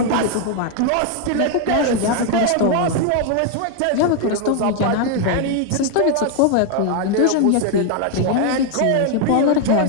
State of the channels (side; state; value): both; different; correlation 0.00